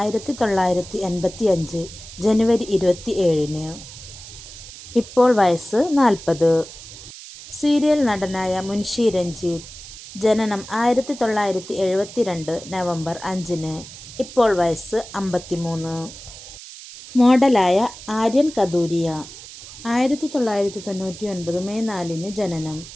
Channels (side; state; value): right; noise; hiss, 15 dB below the sound